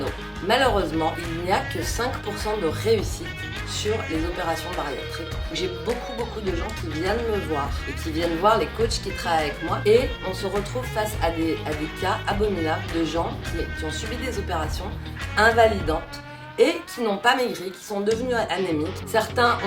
Malheureusement, il n'y a que 5% de réussite sur les opérations bariatriques. J'ai beaucoup de gens qui viennent me voir et qui viennent voir les coachs qui travaillent avec moi et on se retrouve face à des cas abominables de gens qui ont subi des opérations invalidantes et qui n'ont pas maigri, qui sont devenus anémiques. Certains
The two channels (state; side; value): identical; both; correlation 1.00